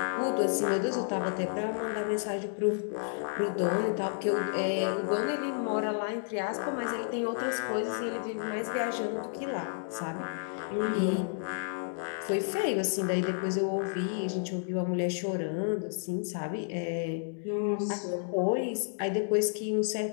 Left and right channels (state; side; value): silent; right; digital silence